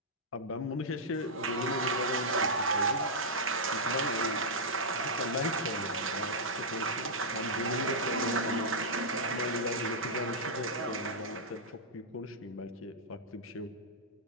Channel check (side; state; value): both; normal; correlation -0.09